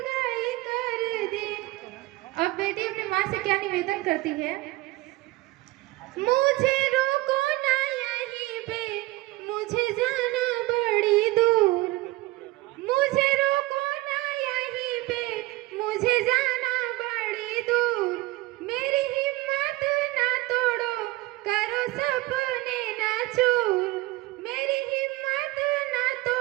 कर दी। अब बेटी अपनी माँ से क्या निवेदन करती है? मुझे रोको ना यहीं पे, मुझे जाना बड़ी दूर। मुझे रोको ना यहीं पे, मुझे जाना बड़ी दूर। मेरी हिम्मत ना तोड़ो, करो सपने ना चूर। मेरी हिम्मत ना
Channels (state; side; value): quieter; left; 19.5 dB